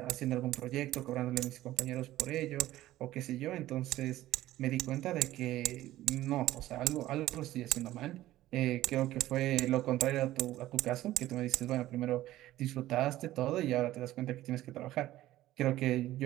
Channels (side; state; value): left; quieter; 15.1 dB